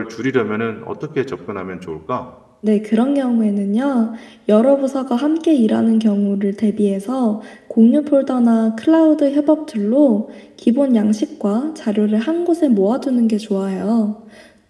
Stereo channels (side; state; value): both; identical; correlation 1.00